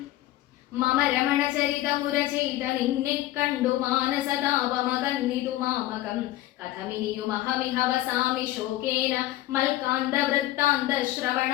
മമ രമണചരിതമുര ചെയ്ത നിന്നെ കണ്ടു മാനസതാപമകന്നിതു മാമകം. കഥമിനിയുമഹമിഹ വസാമി ശോകേന മൽക്കാന്ത വൃത്താന്ത ശ്രവണ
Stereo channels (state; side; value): quieter; right; 15.6 dB